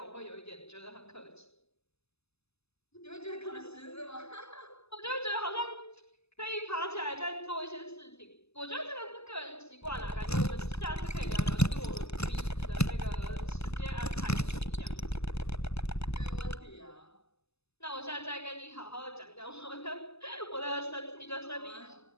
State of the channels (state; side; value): late; right; 0.79 ms